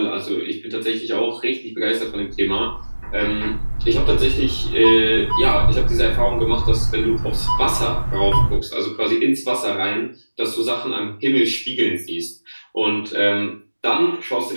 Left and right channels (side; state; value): both; inverted; correlation -1.00